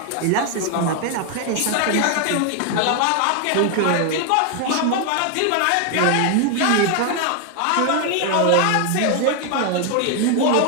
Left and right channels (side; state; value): both; different; correlation 0.01